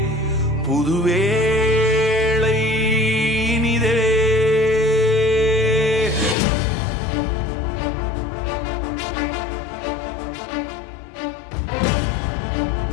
புது வேளை இனிதே.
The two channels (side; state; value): right; drops out; at 6.4 s